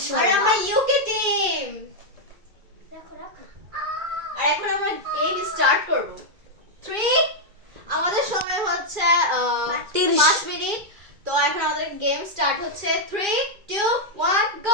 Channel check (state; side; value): late; left; 2.0 ms